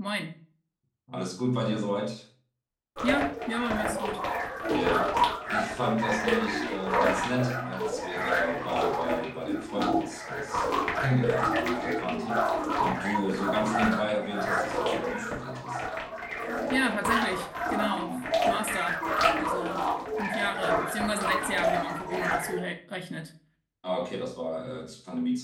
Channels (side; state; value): both; identical; correlation 1.00